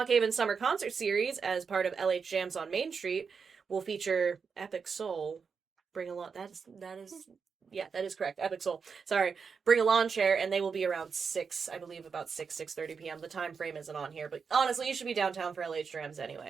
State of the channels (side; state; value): left; quieter; 5.7 dB